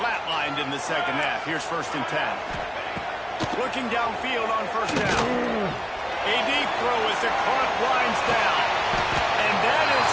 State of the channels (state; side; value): identical; both; correlation 1.00